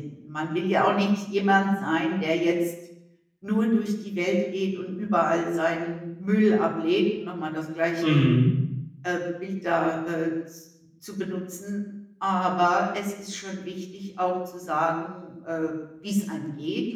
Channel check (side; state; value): both; identical; correlation 1.00